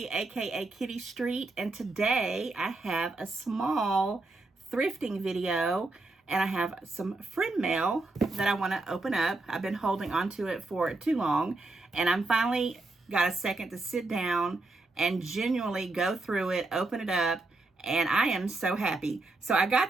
aka Kitty Street, and today I have a small thrifting video, and I have some friend mail that I want to open up. I've been holding onto it for too long, and I'm finally got a second to sit down and genuinely go through it, open it up, and I am so happy. So I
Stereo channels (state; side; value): quieter; left; 3.2 dB